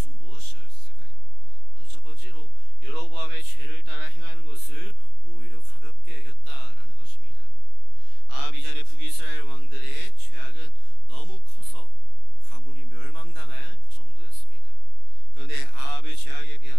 무엇이었을까요? 먼저 첫 번째로 여로보암의 죄를 따라 행하는 것을 오히려 가볍게 여겼다라는 것입니다. 아합 이전의 북이스라엘 왕들의 죄악은 너무 커서 가문이 멸망당할 정도였습니다. 그런데 아합의 죄악에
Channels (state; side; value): late; left; 29 ms